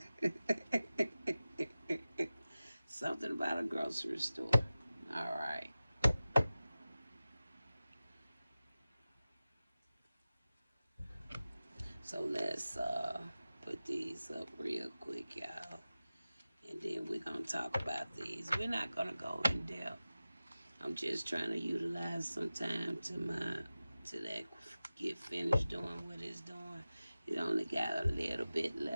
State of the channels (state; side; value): inverted; both; correlation -0.96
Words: Something about a grocery store. All right. So let's put these up real quick, y'all. And then we're going to talk about these. We're not going to go in depth. I'm just trying to utilize some time to that get finished doing what it's doing. It only got a little bit